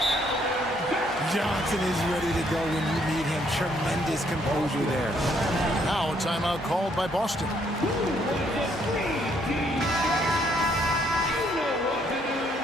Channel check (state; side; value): normal; both; correlation 0.69